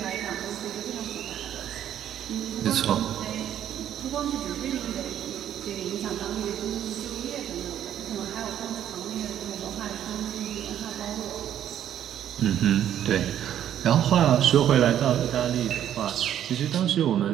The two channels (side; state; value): left; quieter; 10.5 dB